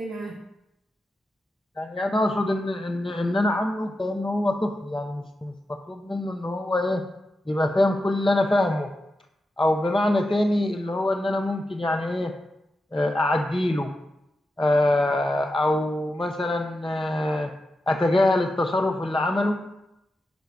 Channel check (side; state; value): both; normal; correlation 0.89